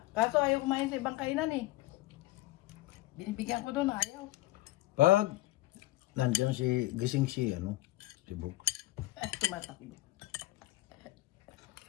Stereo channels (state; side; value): quieter; right; 17.6 dB